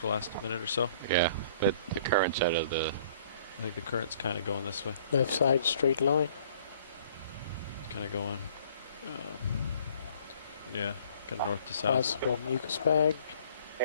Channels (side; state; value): both; inverted; correlation -0.56